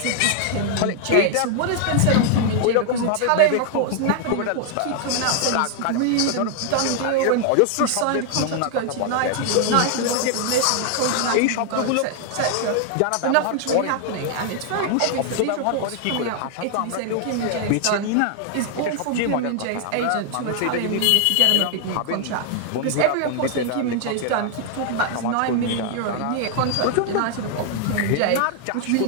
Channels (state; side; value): different; both; correlation 0.00